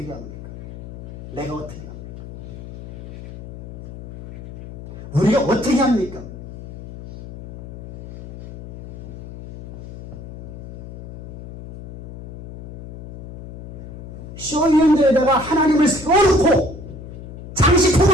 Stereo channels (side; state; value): left; noise; hum, 13 dB below the sound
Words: 합니까? 내가 어떻게 합니까? 우리가 어떻게 합니까? 쇼윈도에다가 하나님을 세워놓고